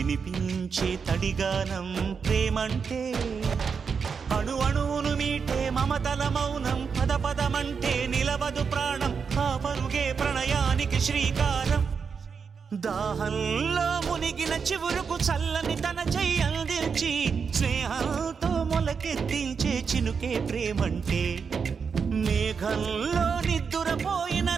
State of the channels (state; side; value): quieter; left; 5.9 dB